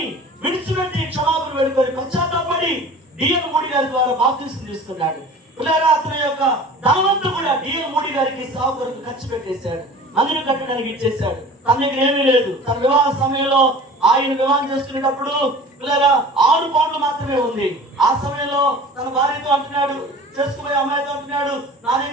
విడిచిపెట్టి క్షమాపణ వేడుకొని పశ్చాత్తాపడి డిఎన్ మోడీ గారి ద్వారా బాప్తిస్మం తీసుకున్నాడు. అతని యొక్క ధనవంతుడు కూడా డిఎన్ మోడీ గారికి సేవ కొరకు ఖర్చు పెట్టేశాడు, మందిని కట్టడానికి ఇచ్చేశాడు. తన దగ్గర ఏమీ లేదు. తన వివాహ సమయంలో ఆయన వివాహం చేసుకునేటప్పుడు 6 పౌండ్లు మాత్రమే ఉంది. ఆ సమయంలో తన భార్యతో అంటున్నాడు, చేసుకునే అమ్మాయితో అంటున్నాడు, నా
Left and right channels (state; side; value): normal; both; correlation 0.41